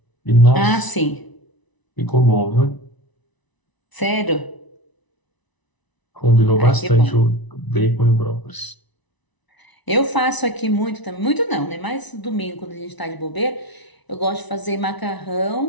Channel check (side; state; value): right; late; 1.0 ms